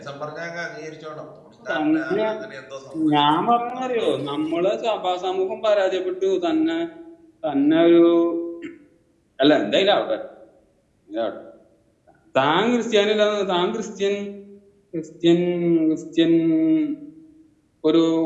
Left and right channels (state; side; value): identical; both; correlation 1.00